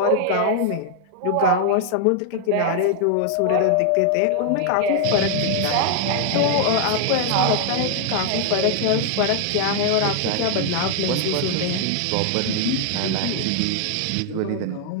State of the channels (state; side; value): different; both; correlation 0.00